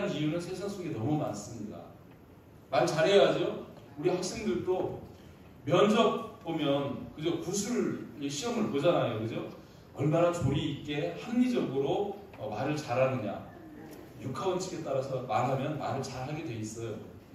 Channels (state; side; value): identical; both; correlation 1.00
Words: 이유는 세상 속에 너무 많습니다. 말 잘해야죠. 우리 학생들도 면접 보면 그죠? 구술 시험을 보잖아요. 그죠? 얼마나 조리 있게 합리적으로 말을 잘하느냐. 육하원칙에 따라서 말하면 말을 잘하게 돼 있어요.